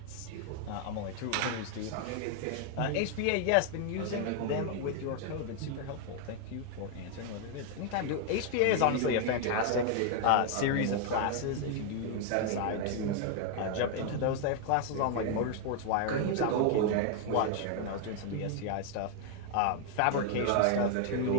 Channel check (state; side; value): different; both; correlation 0.00